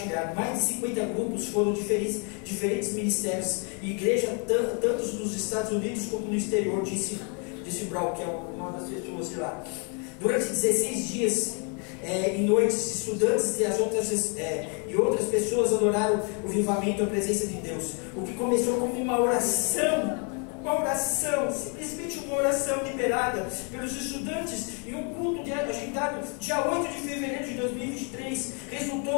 Mais de 50 grupos foram diferentes ministérios e igreja, tanto nos Estados Unidos como no exterior, disse Brown, que é uma das pessoas de lá. Durante 16 dias e noites, estudantes e outras pessoas adoraram o avivamento e a presença de Deus. O que começou como uma oração, simplesmente uma oração liberada pelos estudantes em um culto agendado dia 8 de fevereiro de 2023,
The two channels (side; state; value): right; quieter; 37.0 dB